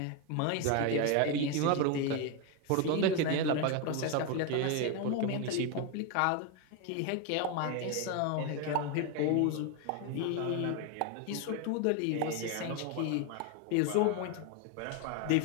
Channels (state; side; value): different; both; correlation 0.01